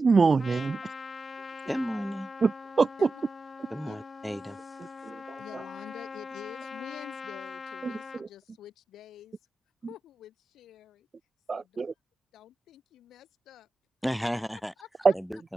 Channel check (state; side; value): quieter; left; 3.3 dB